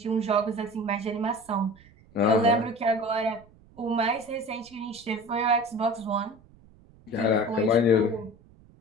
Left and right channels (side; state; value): right; noise; rumble, 26 dB below the sound